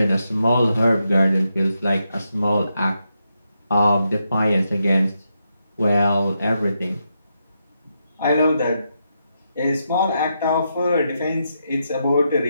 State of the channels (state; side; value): inverted; both; correlation -0.83